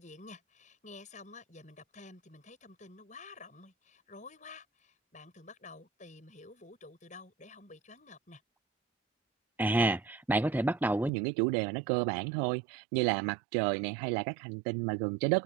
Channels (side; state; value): left; drops out; at 11.1 s